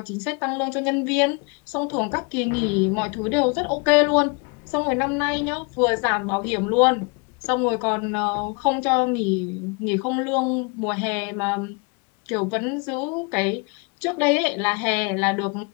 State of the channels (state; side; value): quieter; right; 32.4 dB